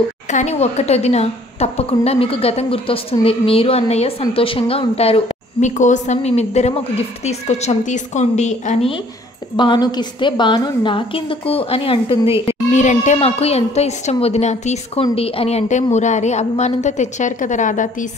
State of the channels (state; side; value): normal; both; correlation 0.58